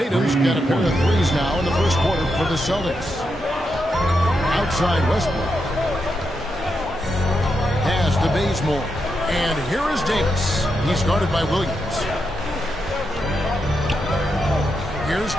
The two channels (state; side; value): normal; both; correlation 0.84